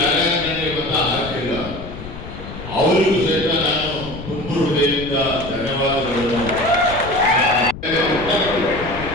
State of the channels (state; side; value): noise; left; rumble, 11 dB below the sound